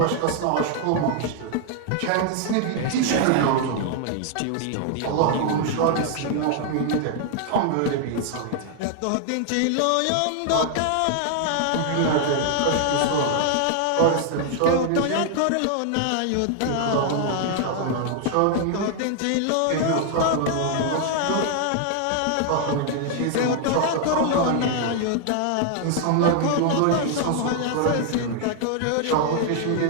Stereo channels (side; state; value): both; different; correlation 0.00